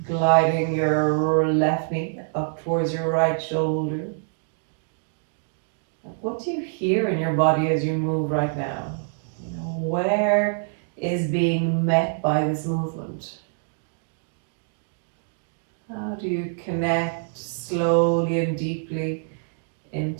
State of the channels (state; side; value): silent; left; digital silence